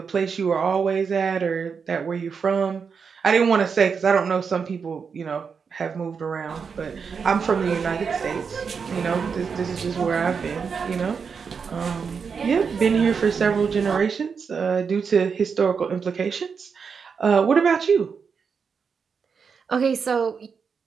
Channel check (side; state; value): left; quieter; 5.9 dB